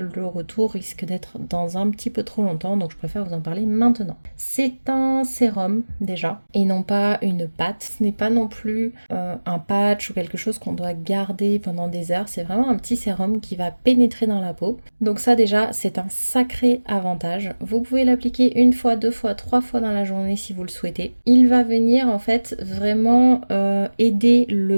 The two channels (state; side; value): inverted; both; correlation -1.00